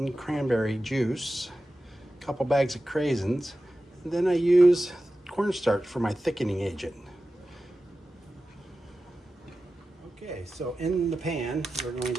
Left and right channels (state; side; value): normal; both; correlation 0.94